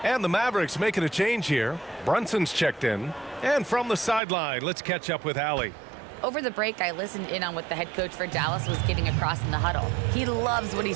And the Mavericks making a change here. Brunson's checked in. And from the sideline, let's catch up with Allie. Over the break, I listened in on what the head coach for Dallas was getting across in the huddle. He loves what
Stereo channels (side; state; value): left; drops out; at 4.2 s